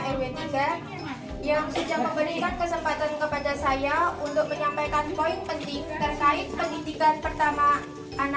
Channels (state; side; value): identical; both; correlation 1.00